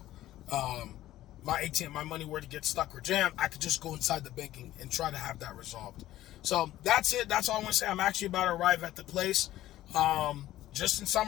My ATM, my money were to get stuck or jammed, I could just go inside the banking and try to have that resolved. So that's it. That's all I want to say. I'm actually about to arrive at the place. Just in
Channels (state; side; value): quieter; right; 14.4 dB